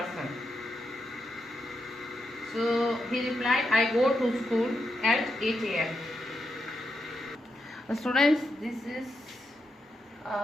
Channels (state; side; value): normal; both; correlation 0.85